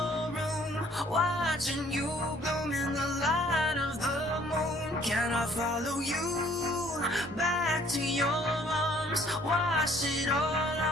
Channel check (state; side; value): normal; both; correlation 0.59